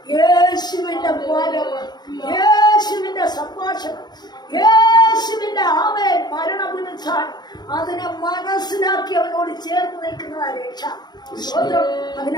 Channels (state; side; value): late; right; 0.20 ms